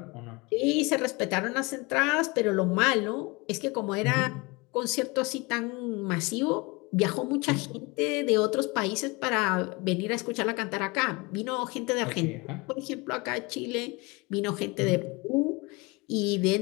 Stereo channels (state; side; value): quieter; right; 26.1 dB